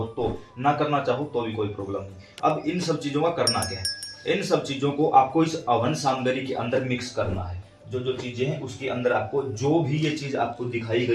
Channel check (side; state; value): both; identical; correlation 1.00